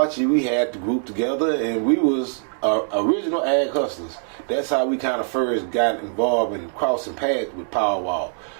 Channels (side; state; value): left; silent; 63 dB below the other